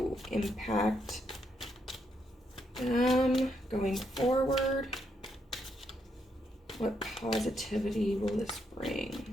impact them going forward? What positivity will this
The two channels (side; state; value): both; normal; correlation 0.77